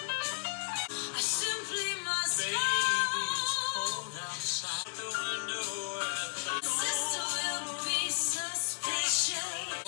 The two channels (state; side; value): silent; right; digital silence